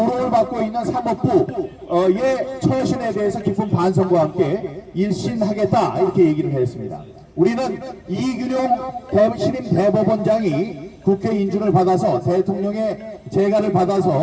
받고 있는 사법부의 처신에 대해서 깊은 반성과 함께 일신하겠다 이렇게 얘기를 했습니다. 우리는 이균용 신임 대법원장이 국회 인준을 받아서 대통령의 재가를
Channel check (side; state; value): both; identical; correlation 1.00